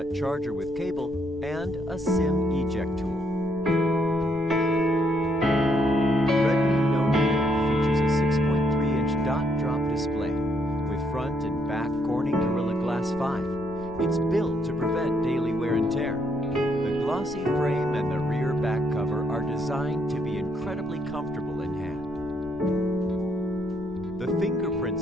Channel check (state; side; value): noise; right; rumble, 19 dB below the sound